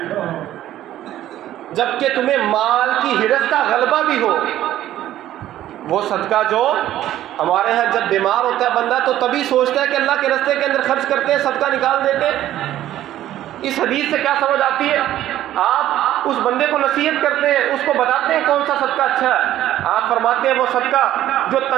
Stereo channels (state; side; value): quieter; left; 13.1 dB